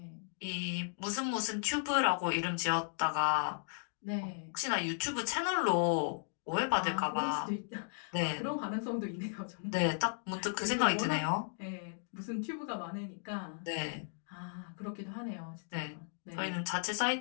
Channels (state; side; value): silent; right; digital silence